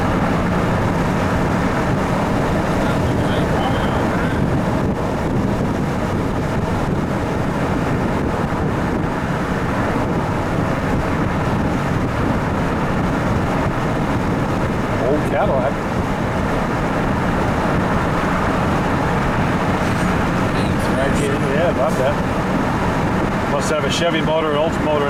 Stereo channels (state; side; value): identical; both; correlation 1.00